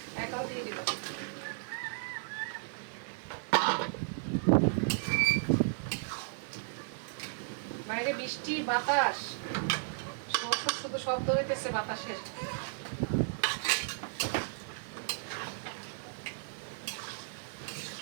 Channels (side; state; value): left; silent; digital silence